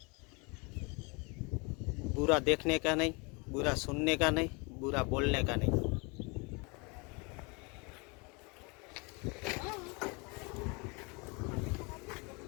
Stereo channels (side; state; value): right; quieter; 29.8 dB